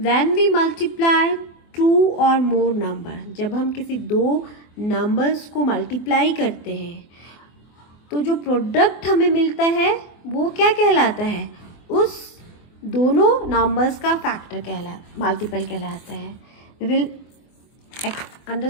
when we multiply two or more number, जब हम किसी दो numbers को multiply करते हैं तो जो product हमें मिलता है वो क्या कहलाता है? उस दोनों numbers का factor multiple कहलाता है. We will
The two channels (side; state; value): right; late; 24 ms